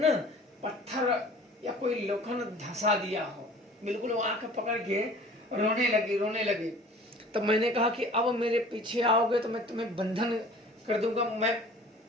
पत्थर या कोई लोखंड धंसा दिया हो, बिल्कुल वो आंख पकड़ के रोने लगी। तब मैंने कहा कि अब मेरे पीछे आओगे तो मैं तुम्हें बंधन कर दूंगा, मैं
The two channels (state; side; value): normal; both; correlation 0.46